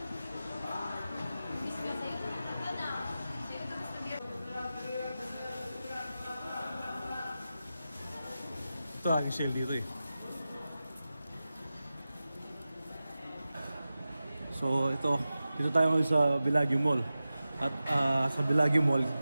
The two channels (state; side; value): inverted; both; correlation -0.94